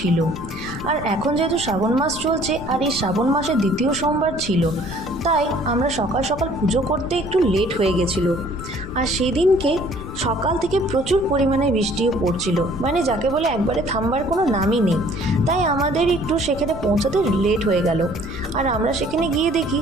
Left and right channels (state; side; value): noise; left; rumble, 12 dB below the sound